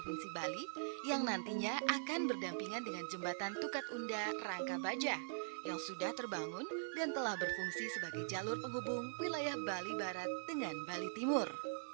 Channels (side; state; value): left; silent; digital silence